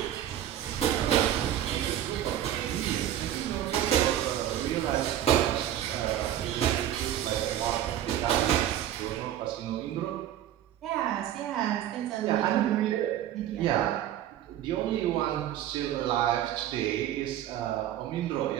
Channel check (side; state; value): left; quieter; 11.7 dB